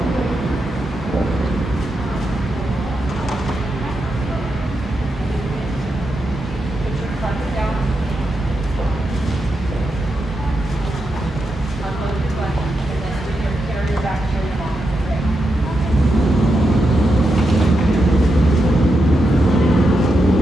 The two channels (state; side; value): normal; both; correlation 0.85